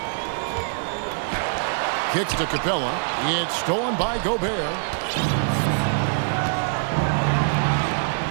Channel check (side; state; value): left; silent; digital silence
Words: Kicks to Capella. It's stolen by Gobert.